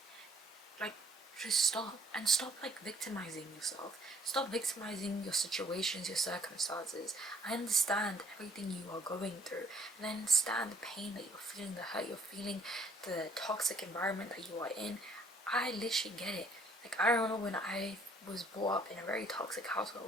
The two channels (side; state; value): both; normal; correlation 0.61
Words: Like, just stop and stop like victimizing yourself. Stop victimizing your situations, your circumstances. I understand everything you are going through, and I understand the pain that you're feeling, the hurt you're feeling, the toxic environment that you are in. I literally get it. Like, I remember when I was brought up in a very toxic